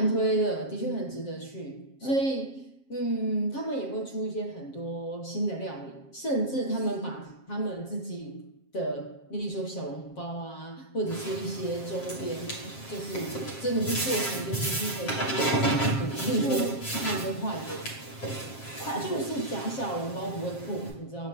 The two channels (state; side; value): late; right; 7.5 ms